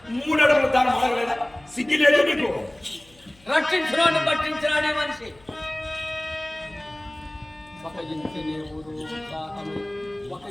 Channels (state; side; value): noise; left; hum, 28 dB below the sound